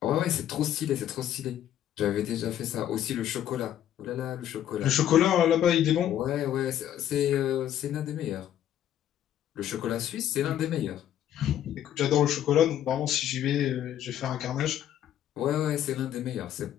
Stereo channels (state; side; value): quieter; right; 11.1 dB